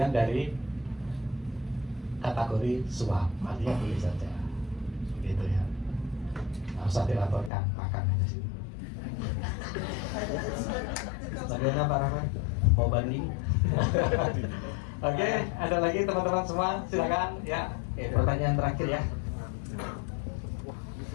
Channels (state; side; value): drops out; right; at 7.5 s